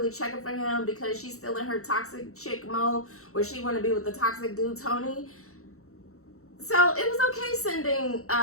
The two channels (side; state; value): right; late; 0.64 ms